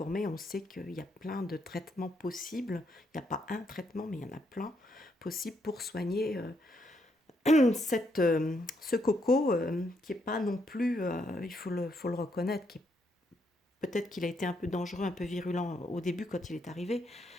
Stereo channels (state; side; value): normal; both; correlation 0.76